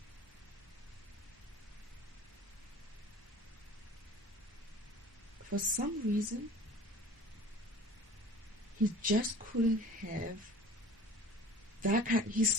for some reason, he just couldn't have that kind.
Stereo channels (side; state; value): both; normal; correlation 0.44